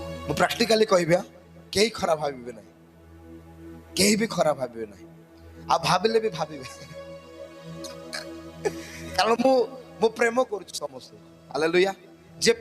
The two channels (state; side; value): identical; both; correlation 1.00